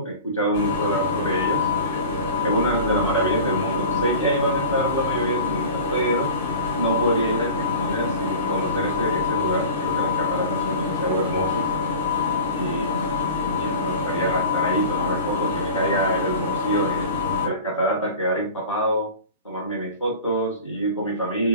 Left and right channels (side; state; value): both; inverted; correlation -0.37